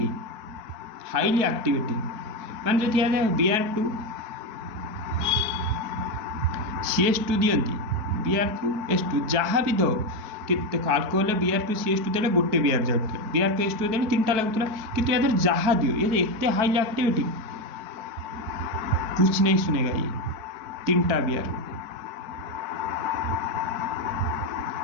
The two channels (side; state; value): left; late; 4.5 ms